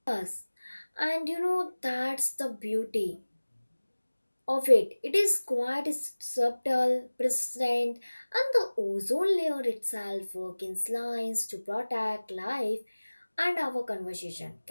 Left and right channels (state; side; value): inverted; both; correlation -1.00